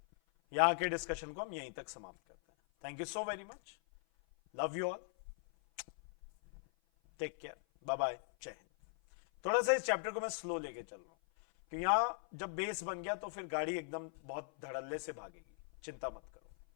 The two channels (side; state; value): right; silent; 51 dB below the other